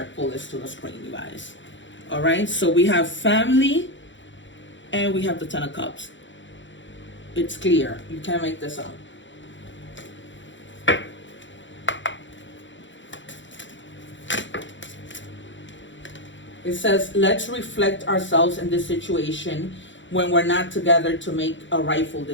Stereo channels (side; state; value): right; late; 0.54 ms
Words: pull this to the screen, you guys. All right, so we have family and we have the Ten of Cups. It's clear. You can't make this up. It says, let's reflect ourselves in this situation when we're not together to make a rightful